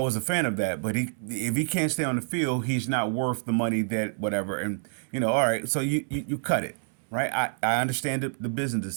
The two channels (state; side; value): silent; left; digital silence